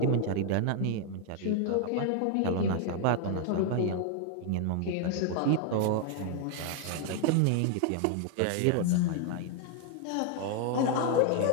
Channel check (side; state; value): both; different; correlation 0.00